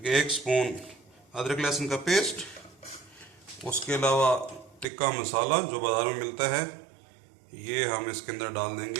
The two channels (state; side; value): drops out; left; at 4.9 s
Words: 1 स्पून अदरक लहसुन का पेस्ट। उसके अलावा टिक्का मसाला जो बाज़ार में मिलता है ये हम इसके अंदर डाल